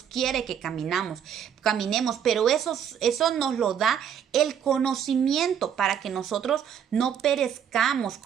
quiere que caminemos, pero eso nos lo da el conocimiento para que nosotros no perezcamos,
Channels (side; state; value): left; quieter; 8.6 dB